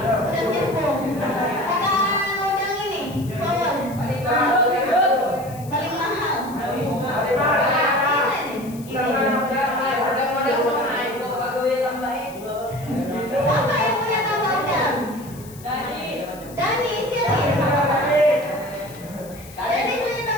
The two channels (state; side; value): noise; left; hiss, 20 dB below the sound